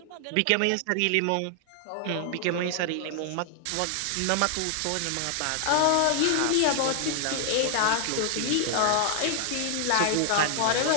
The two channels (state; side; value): different; both; correlation 0.00